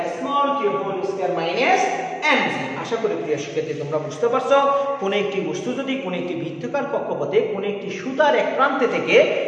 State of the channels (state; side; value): identical; both; correlation 1.00